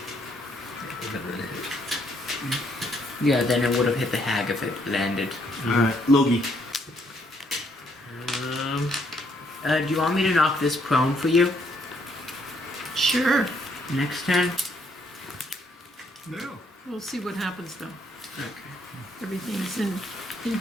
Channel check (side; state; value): both; normal; correlation 0.71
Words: Yeah, then it would have hit the hag if it landed. Alright, Logi. Do you want me to knock this prone for you? Sure. Next turn? No. We'll see what happens though. Okay. Everything's in